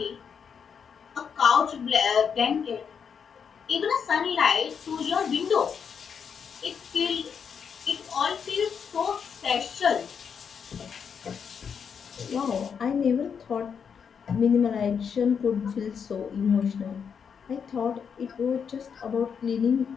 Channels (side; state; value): right; quieter; 6.8 dB